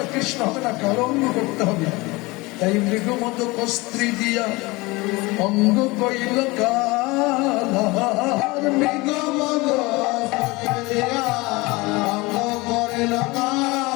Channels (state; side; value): quieter; right; 23.2 dB